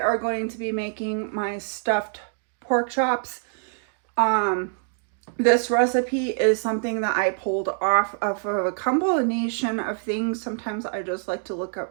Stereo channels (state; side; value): silent; left; digital silence